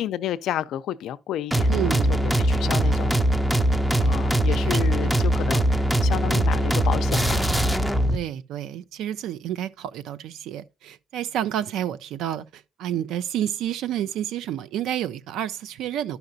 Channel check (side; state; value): both; normal; correlation 0.75